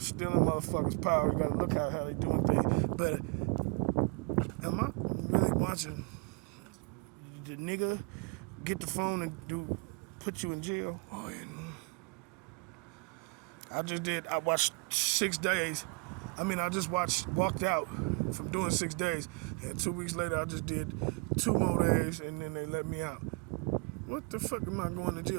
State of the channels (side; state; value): left; quieter; 31.4 dB